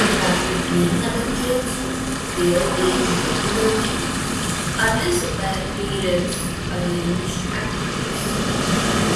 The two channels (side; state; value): both; identical; correlation 1.00